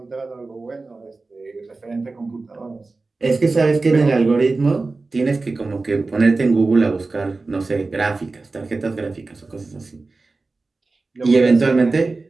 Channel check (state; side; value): quieter; left; 3.6 dB